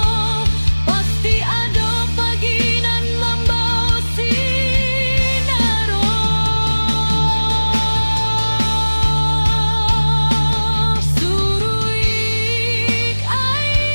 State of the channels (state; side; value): inverted; both; correlation -1.00